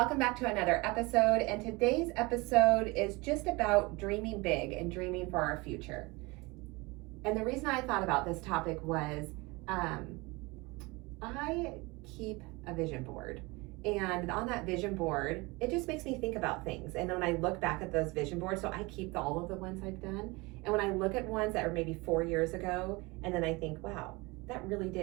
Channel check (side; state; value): left; quieter; 24.7 dB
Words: back to another episode. And today's episode is just about dreaming big and dreaming for our future. And the reason I thought about this topic was I keep a vision board. And on that vision board, it just makes me think about things. And when I look back at those vision boards, so I keep all of the ones I've done. And when I look at ones that were maybe 4 years ago, and then I think, wow, that really